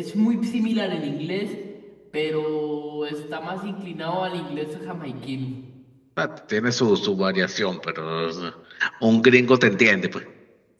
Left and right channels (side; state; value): both; identical; correlation 1.00